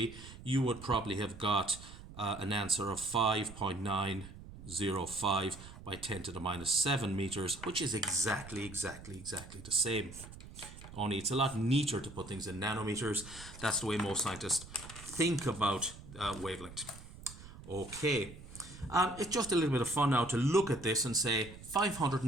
you would probably have got an answer of 5.905 by 10 to the minus 7 meters, which is exactly the same. Only it's a lot neater to put things in nanometers. That's the way most scientists think about wavelength. Okay, it's just a little bit of fun now to look at this and say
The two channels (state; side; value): noise; right; rumble, 15 dB below the sound